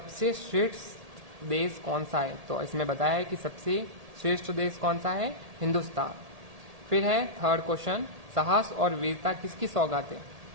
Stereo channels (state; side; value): late; left; 1.8 ms